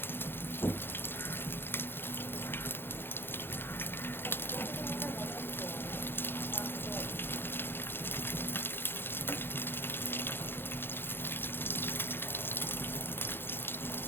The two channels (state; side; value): late; right; 0.10 ms